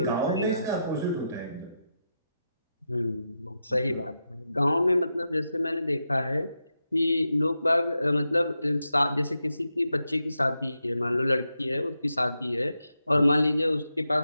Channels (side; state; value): both; inverted; correlation -0.87